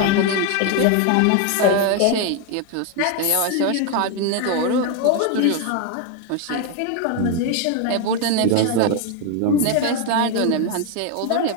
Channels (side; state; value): both; different; correlation 0.01